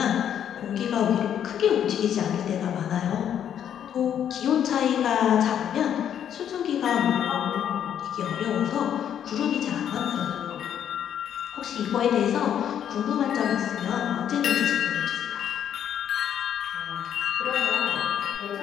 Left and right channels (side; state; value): right; quieter; 9.5 dB